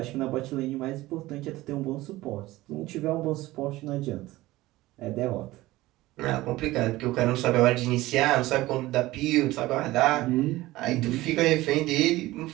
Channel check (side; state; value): left; quieter; 17.9 dB